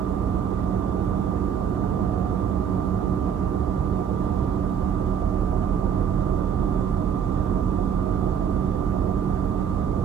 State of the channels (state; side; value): quieter; left; 7.9 dB